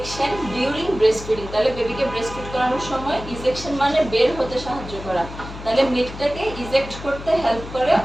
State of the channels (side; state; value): left; noise; hum, 12 dB below the sound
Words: during breast feeding. তাহলে বেবিকে ব্রেস্ট ফিড করানোর সময় ইজেকশন মানে বের হতে সাহায্য করা, তাহলে মিল্কটাকে ইজেক্ট করতে হেল্প করে